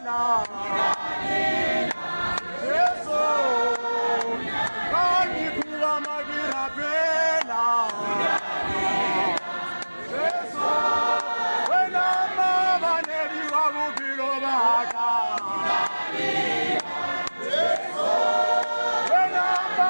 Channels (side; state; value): both; inverted; correlation -1.00